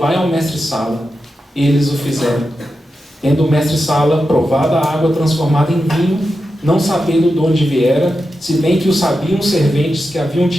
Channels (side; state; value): both; normal; correlation 0.89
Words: ao mestre-sala. Eles o fizeram. Tendo o mestre-sala provado a água transformada em vinho, não sabendo de onde viera, se bem que o sabiam os serventes que haviam